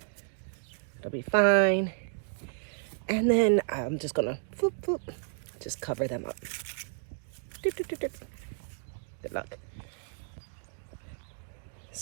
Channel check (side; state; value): left; silent; digital silence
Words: It'll be fine. And then I'm just gonna just cover them up. Good luck.